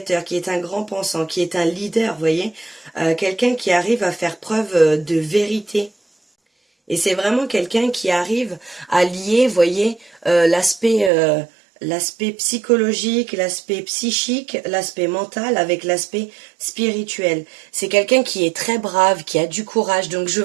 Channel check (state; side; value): drops out; left; at 11.1 s